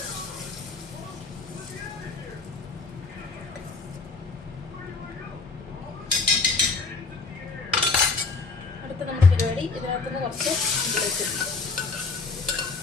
അടുത്ത നമ്മുടെ പരിപാടി ഇതിനകത്തുനിന്ന് കുറച്ച് ഇതിലേക്ക്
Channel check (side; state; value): right; quieter; 4.1 dB